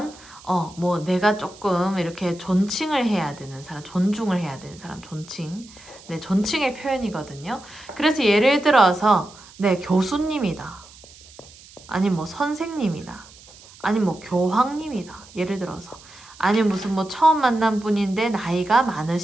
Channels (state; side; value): noise; right; hiss, 22 dB below the sound